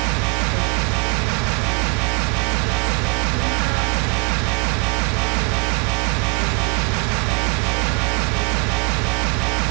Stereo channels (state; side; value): quieter; left; 29.9 dB